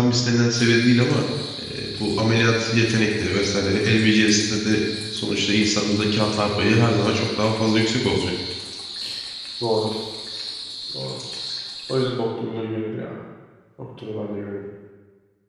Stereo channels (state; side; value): identical; both; correlation 1.00